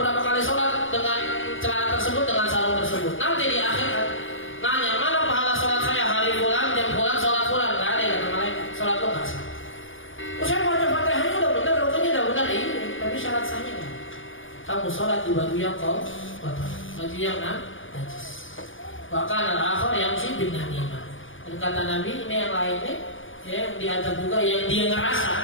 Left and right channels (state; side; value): late; right; 0.57 ms